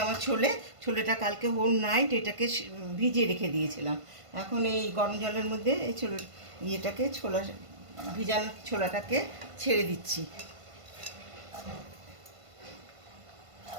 আমার ছোলেটা কালকে হোল নাইট এটাকে ভিজিয়ে রেখে দিয়েছিলাম। এখন এই গরম জলের মধ্যে এই ভিজানো ছোলাটাকে ছেড়ে দিচ্ছি।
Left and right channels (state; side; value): late; left; 1.5 ms